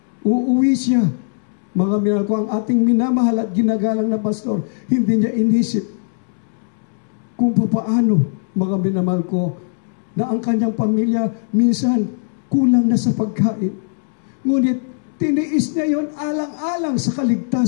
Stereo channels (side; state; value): right; silent; digital silence